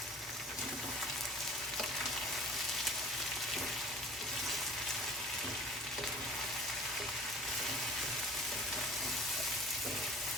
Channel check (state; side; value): normal; both; correlation 0.45